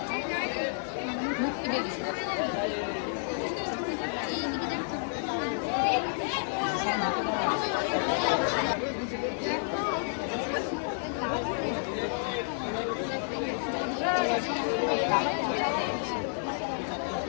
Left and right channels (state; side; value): silent; right; digital silence